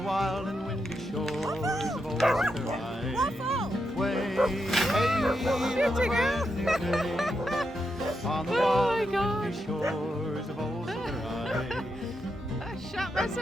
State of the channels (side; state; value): both; normal; correlation 0.84